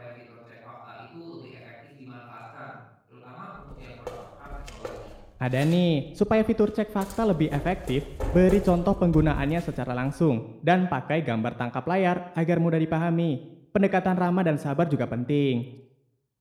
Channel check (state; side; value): identical; both; correlation 1.00